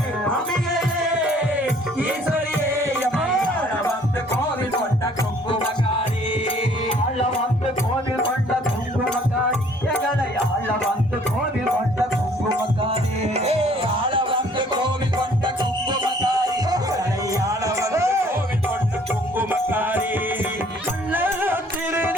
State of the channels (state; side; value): normal; both; correlation 0.58